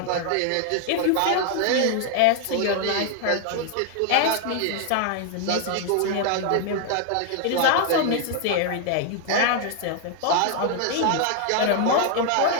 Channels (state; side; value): different; both; correlation 0.00